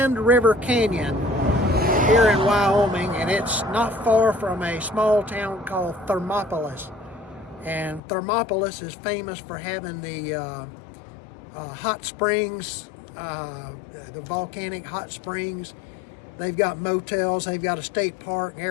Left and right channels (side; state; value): right; drops out; at 8.0 s